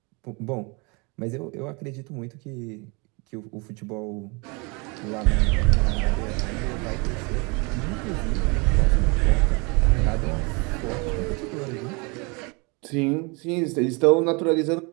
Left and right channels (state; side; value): quieter; left; 29.7 dB